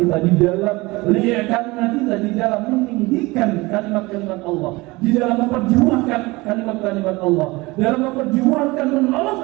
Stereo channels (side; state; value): left; quieter; 22.5 dB